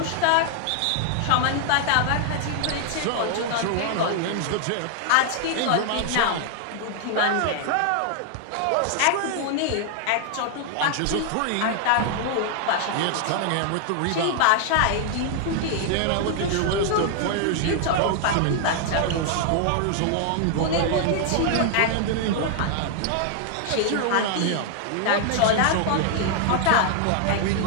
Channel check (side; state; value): both; different; correlation 0.00